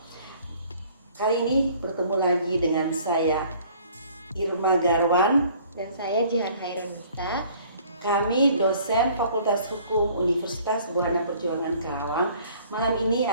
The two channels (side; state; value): both; inverted; correlation -0.55